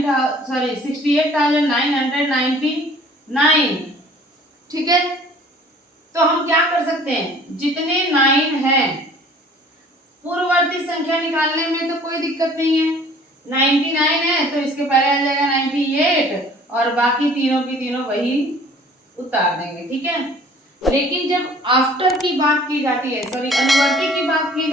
ठीक है, तो हम क्या कर सकते हैं, जितने 9 हैं पूर्ववर्ती संख्या निकालने में तो कोई दिक्कत नहीं है। 99 है तो इसके पहले आ जाएगा 98 और बाकी तीनों की तीनों वही उतार देंगे, ठीक है। लेकिन जब आफ्टर की बात की जाती है, सॉरी अनुवर्ती की बात की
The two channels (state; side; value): normal; both; correlation 0.52